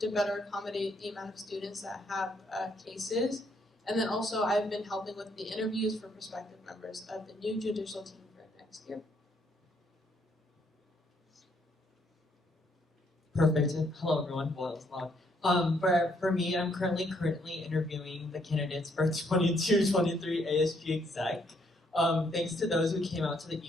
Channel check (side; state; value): both; normal; correlation 0.71